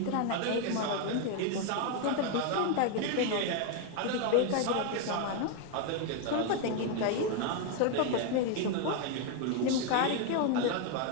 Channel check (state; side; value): different; both; correlation 0.01